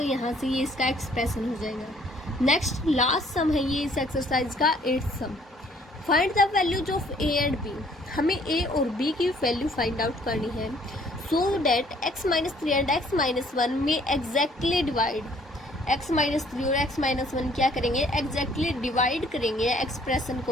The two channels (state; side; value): normal; both; correlation 0.61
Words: यहाँ से ये इसका एक्सप्रेशन हो जाएगा। नेक्स्ट लास्ट सम है ये इस एक्सरसाइज का 8th sum. Find the values of a and b। हमें a और b की वैल्यू फाइंड आउट करनी है so that x-3 and x-1 में एग्जैक्टली डिवाइड। x-3 और x-1 क्या करेंगे एग्जैक्टली डिवाइड करेंगे एक्सप्रेशन